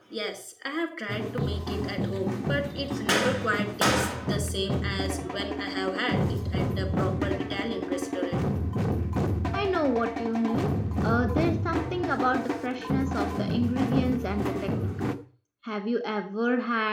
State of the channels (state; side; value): identical; both; correlation 1.00